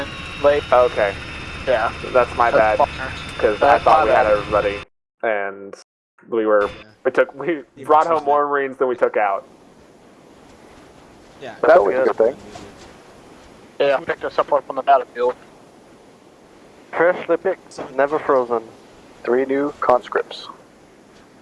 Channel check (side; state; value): both; identical; correlation 1.00